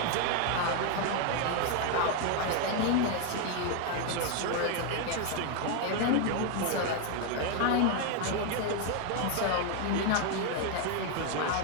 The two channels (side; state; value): both; different; correlation 0.01